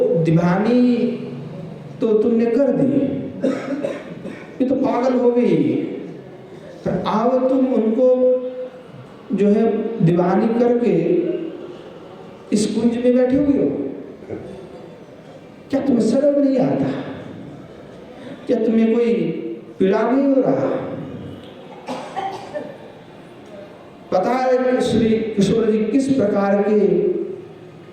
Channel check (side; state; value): both; identical; correlation 1.00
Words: दीवानी तो तुमने कर दी, ये तो पागल हो गई, पर अब तुम उनको जो है दीवानी करके इस कुंज में बैठे हुए हो। क्या तुम्हें शर्म नहीं आता? क्या तुम्हें कोई पीड़ा नहीं हो रहा? पता है श्री किशोर जी किस प्रकार के